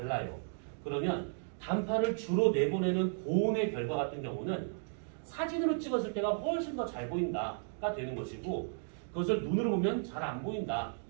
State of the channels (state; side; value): silent; left; digital silence